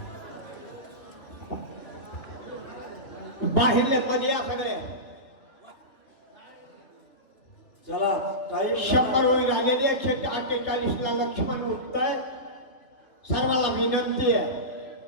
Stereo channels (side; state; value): right; late; 2.8 ms